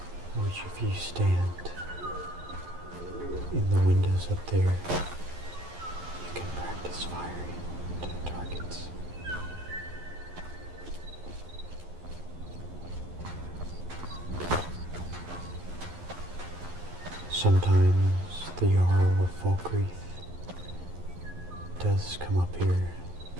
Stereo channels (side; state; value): left; late; 11 ms